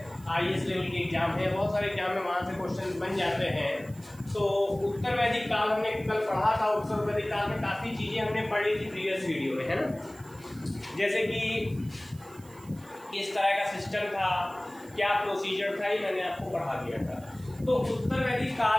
आईएएस लेवल के एग्जाम है, बहुत सारे एग्जाम में वहाँ से क्वेश्चन बन जाते हैं। तो उत्तर वैदिक काल हमने कल पढ़ा था। उत्तर वैदिक काल में काफ़ी चीज़ें हमने पढ़ी थी प्रीवियस वीडियो में, है ना। जैसे कि किस तरह का सिस्टम था, क्या प्रोसीजर था, ये मैंने आपको पढ़ा दिया था। तो उत्तर वैदिक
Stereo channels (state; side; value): noise; right; hiss, 25 dB below the sound